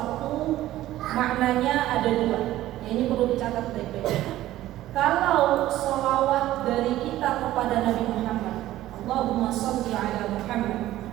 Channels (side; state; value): left; quieter; 14.7 dB